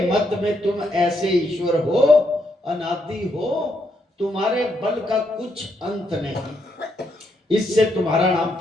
मत में तुम ऐसे ईश्वर हो, अनादि हो, तुम्हारे बल का कुछ अंत नहीं, इससे तुम्हारा नाम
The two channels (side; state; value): both; normal; correlation 0.77